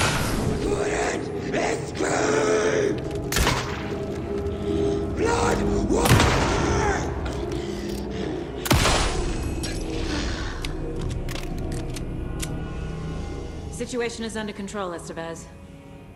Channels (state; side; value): identical; both; correlation 1.00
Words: Couldn't escape! Blood water! Situation is under control, Estevez.